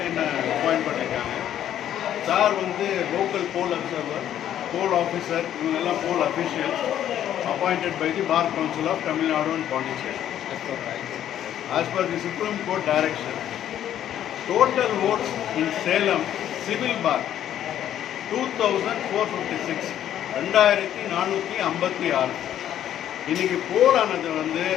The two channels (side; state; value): right; quieter; 11.0 dB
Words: பண்ணிருக்காங்க. Sir வந்து local poll observer, poll officer, இவங்க poll officials appointed by the Bar Council of Tamil Nadu and Puducherry. As per the Supreme Court direction, total votes in Salem civil bar 2456, 2456. இன்னைக்கு போல் ஆனது வந்து